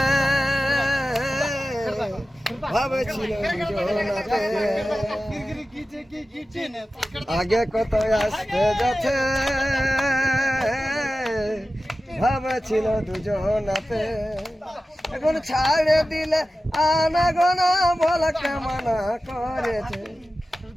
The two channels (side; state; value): both; normal; correlation 0.94